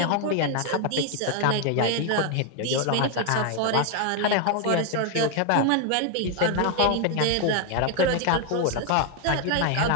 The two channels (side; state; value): both; different; correlation 0.01